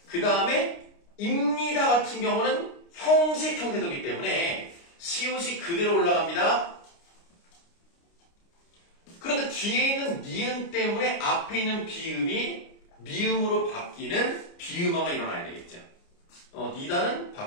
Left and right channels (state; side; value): late; right; 29 ms